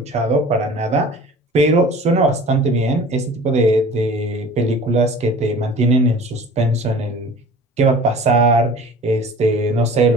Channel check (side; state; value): both; normal; correlation 0.43